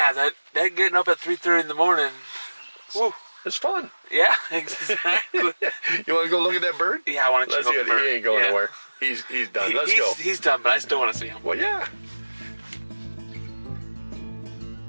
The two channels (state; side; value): inverted; both; correlation -1.00